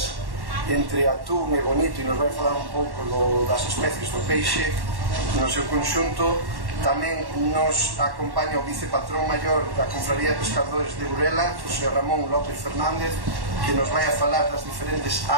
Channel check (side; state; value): left; late; 1.1 ms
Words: entre atún e bonito, e nos vai a falar un pouco das especies do peixe no seu conxunto. Tamén nos acompaña o vicepatrón maior da Confraría de Pescadores de Burela, José Ramón López Fernández, que nos vai a falar das diferentes